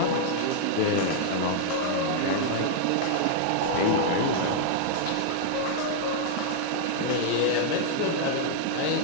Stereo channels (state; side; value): different; both; correlation 0.00